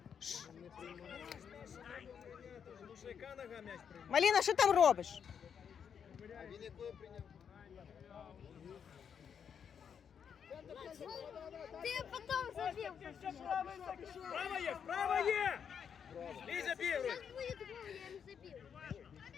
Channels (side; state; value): right; quieter; 7.5 dB